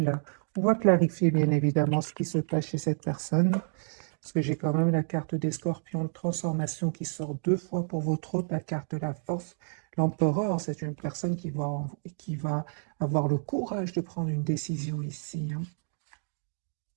on va clarifier bien évidemment ce qui se passe chez cette personne. Parce que j'ai quand même la carte des scorpions de transformation qui sort 2 fois pour votre hôte, la carte de la force. L'empereur, c'est une personne qui va avoir le courage de prendre une décision ici, hein,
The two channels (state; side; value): silent; left; digital silence